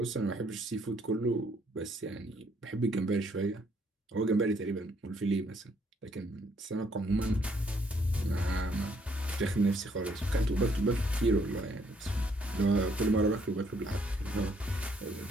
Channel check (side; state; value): both; normal; correlation 0.68